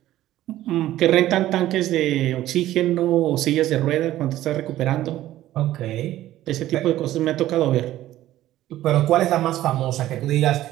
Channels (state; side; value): quieter; left; 14.2 dB